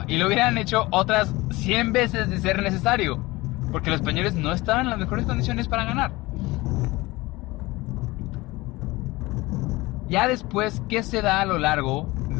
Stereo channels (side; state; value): right; quieter; 20.9 dB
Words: Y lo hubieran hecho otras 100 veces de ser necesario, porque los españoles no estaban en las mejores condiciones para ganar. Ya después, ¿qué se da a lo largo